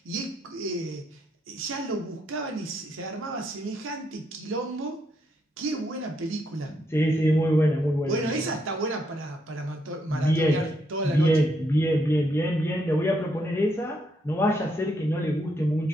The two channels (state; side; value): normal; both; correlation 0.76